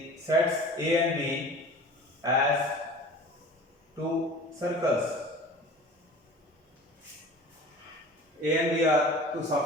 sets A and B as two circles. A and B are two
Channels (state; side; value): normal; both; correlation 0.41